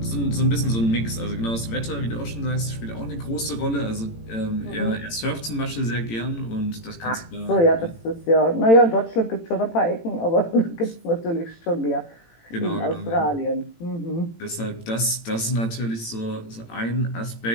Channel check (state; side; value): late; right; 18 ms